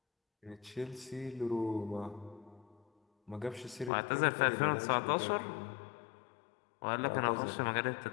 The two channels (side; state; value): right; drops out; at 3.9 s